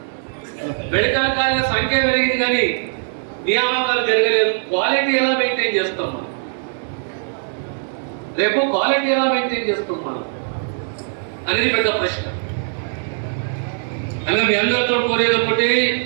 మెడికల్ కాలేజీల సంఖ్య పెరిగింది కానీ నియామకాలు జరగలేదు. క్వాలిటీ ఎలా మెయింటైన్ చేస్తాం మనం? రేపు క్వాలిటీ ఎలా మెయింటైన్ చేస్తాం మనం అనేది పెద్ద ప్రశ్న. అలా మీ అందరితో కోరేది ఒకటి,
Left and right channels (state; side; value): silent; left; 66 dB below the other